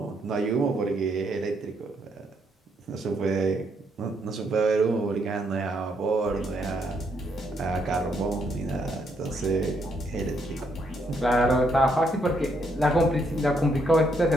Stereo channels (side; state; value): both; normal; correlation 0.74